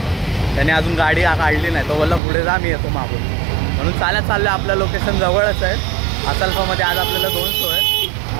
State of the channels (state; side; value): drops out; left; at 2.2 s